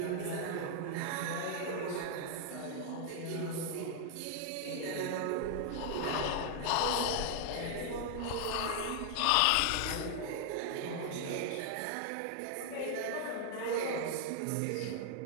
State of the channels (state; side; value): different; both; correlation 0.00